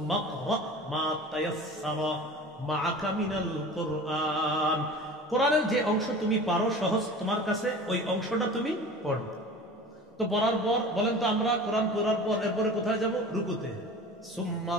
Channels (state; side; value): normal; both; correlation 0.38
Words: ক্রা মা তায়াসসারা মাআকা মিনাল কুরআন, কোরআনের যে অংশ তুমি পারো সহজ তোমার কাছে, ওই অংশটা তুমি পড়ো। তো পড়ার পর বলেন তো, আমরা কোরআন পড়ার পর এরপরে কোথায় যাব? রুকুতে। সুম্মা